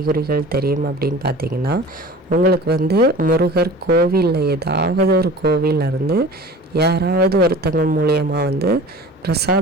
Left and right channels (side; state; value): both; normal; correlation 0.40